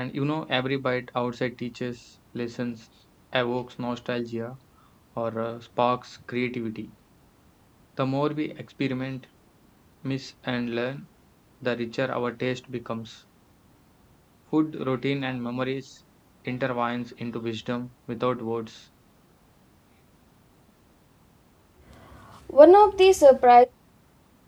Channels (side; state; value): both; identical; correlation 1.00